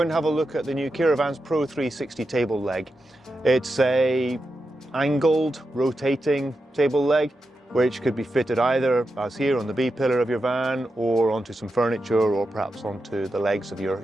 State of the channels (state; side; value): normal; both; correlation 0.89